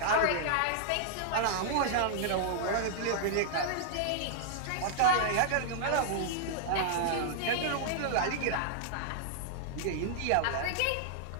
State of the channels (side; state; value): both; different; correlation -0.01